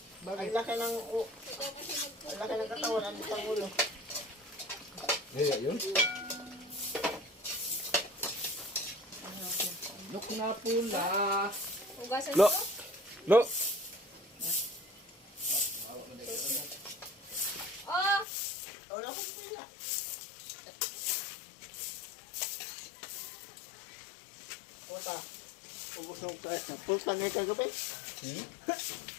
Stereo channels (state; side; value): drops out; right; at 18.2 s